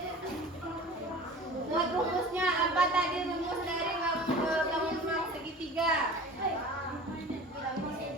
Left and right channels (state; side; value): normal; both; correlation 0.39